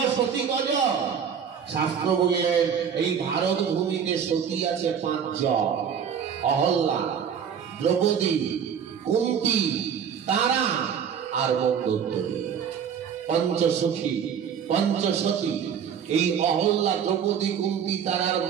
সতী কজন? শাস্ত্র বললেন, এই ভারত ভূমিতে সতী আছে 5 জন। অহল্যা, দ্রৌপদী, কুন্তী, তারা আর মন্দোদরী। পঞ্চসখী, পঞ্চসতী। এই অহল্যা, দ্রৌপদী, কুন্তী, তারার,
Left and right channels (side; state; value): left; quieter; 7.6 dB